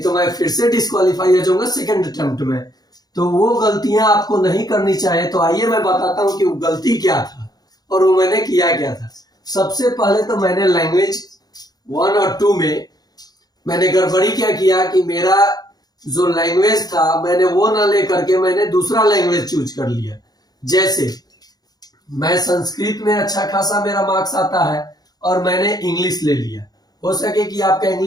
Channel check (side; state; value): right; late; 0.19 ms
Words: तो मैं फिर से डिस्क्वालीफाई हो जाऊंगा सेकंड अटेम्प्ट में। तो वो गलतियां आपको नहीं करनी चाहिए। तो आइए मैं बताता हूँ कि वो गलती क्या था और वो मैंने किया क्या था। सबसे पहले तो मैंने लैंग्वेज 1 और 2 में मैंने गड़बड़ी क्या किया कि मेरा जो लैंग्वेज था मैंने वो ना लेकर के मैंने दूसरा लैंग्वेज चूज कर लिया। जैसे मैं संस्कृत में अच्छा खासा मेरा मार्क्स आता है और मैंने इंग्लिश ले लिया। हो सके कि आपका